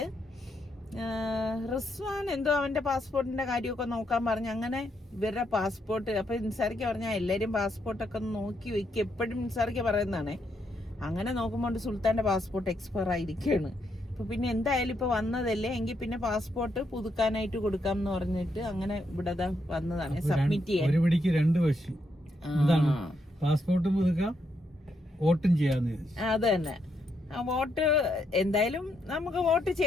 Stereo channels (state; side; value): normal; both; correlation 0.78